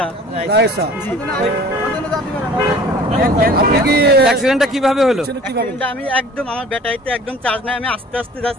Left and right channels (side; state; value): both; normal; correlation 0.47